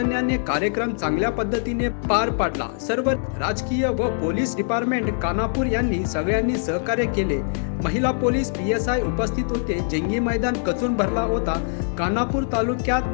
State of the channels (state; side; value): silent; right; digital silence